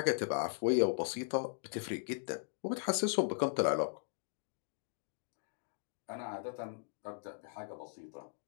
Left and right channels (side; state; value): right; silent; digital silence